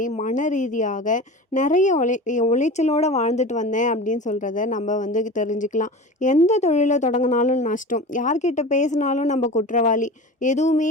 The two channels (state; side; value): normal; both; correlation 0.33